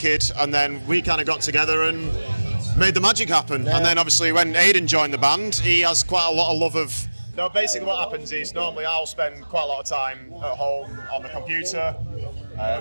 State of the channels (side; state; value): both; inverted; correlation -1.00